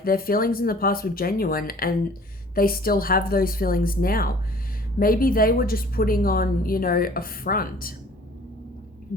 their feelings in the past were genuine and they still have those feelings now. Maybe they were just putting on, a front.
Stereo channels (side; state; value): both; normal; correlation 0.51